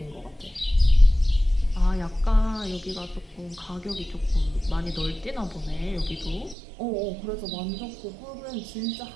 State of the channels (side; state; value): left; drops out; at 6.6 s